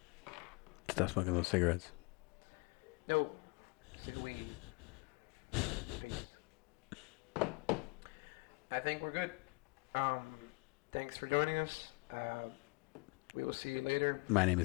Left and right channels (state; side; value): quieter; right; 29.7 dB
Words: Stop smoking those cigarettes. No. Weed. I think we're good. Thanks for joining us. We will see you later. My name